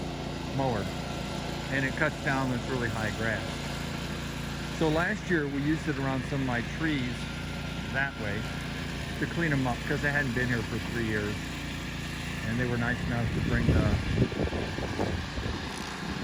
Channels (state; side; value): identical; both; correlation 1.00